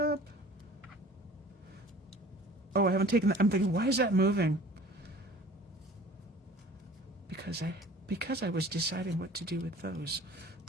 Oh, I haven't taken that. I'm thinking, why is that moving? Because I was deciding what to do with those.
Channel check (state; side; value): normal; both; correlation 0.47